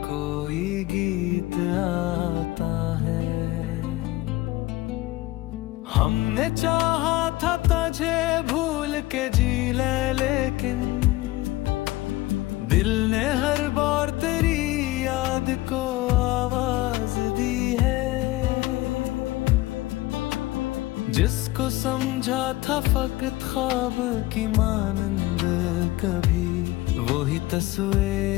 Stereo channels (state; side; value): quieter; right; 18.5 dB